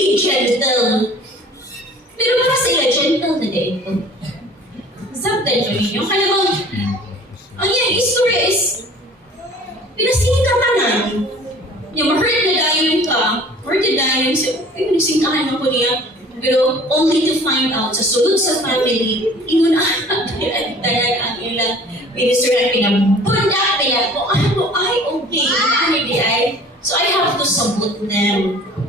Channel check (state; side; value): normal; both; correlation 0.48